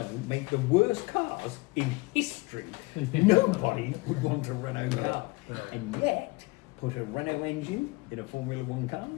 make the worst cars in history. Nobody would want a Renault car. And yet, put a Renault engine in a Formula One car.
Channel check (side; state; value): right; quieter; 24.3 dB